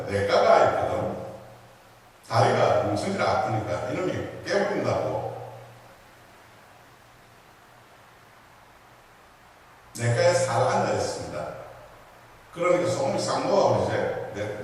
냇가가 있거든. 다리가 뭉쳐지를 아프니까 이놈이 깨부린다고 냇가에 살 앉아 있습니다. 그러니까 소금이 싹 녹아버리지.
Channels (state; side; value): identical; both; correlation 1.00